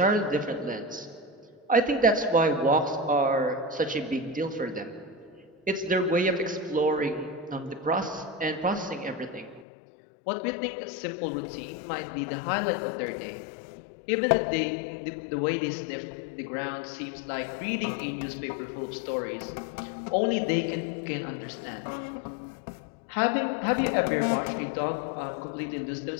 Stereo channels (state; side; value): drops out; right; at 9.7 s